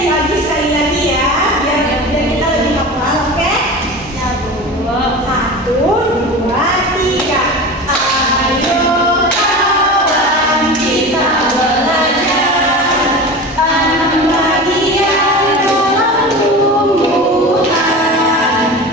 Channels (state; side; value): normal; both; correlation 0.31